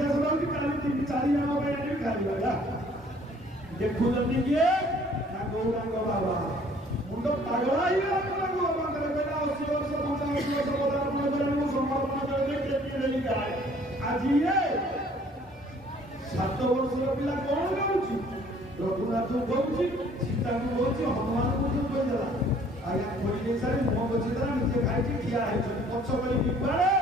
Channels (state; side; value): normal; both; correlation 0.57